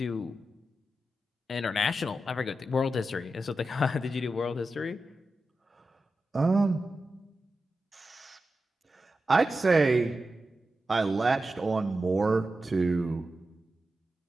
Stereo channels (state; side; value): normal; both; correlation 0.91